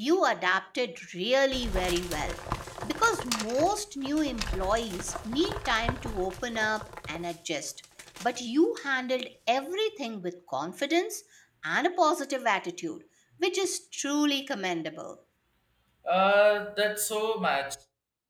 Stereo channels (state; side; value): identical; both; correlation 1.00